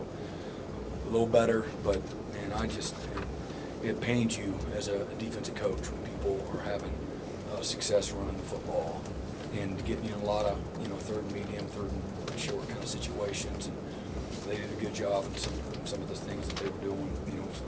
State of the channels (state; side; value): identical; both; correlation 1.00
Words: a little better, but man, it pains you as a defensive coach when people are having success running the football and getting in a lot of third and medium, third and short kind of situations. And they did a good job in some of the things that they were doing,